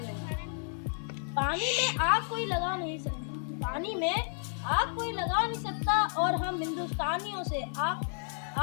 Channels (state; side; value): silent; right; 57 dB below the other